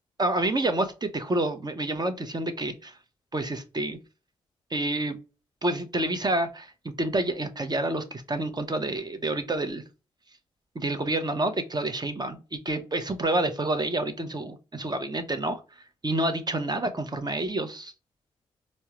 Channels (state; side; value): normal; both; correlation 0.44